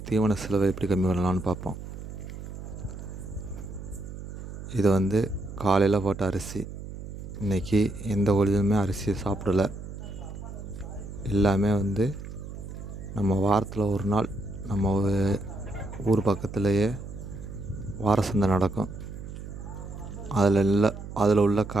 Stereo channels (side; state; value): right; noise; hum, 10 dB below the sound